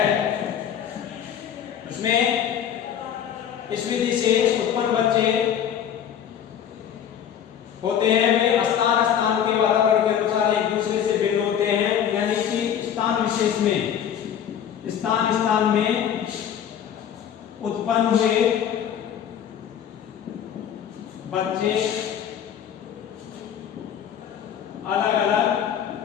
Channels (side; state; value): right; quieter; 9.1 dB